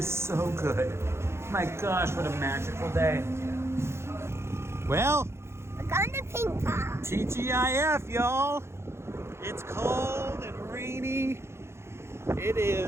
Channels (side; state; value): left; late; 0.13 ms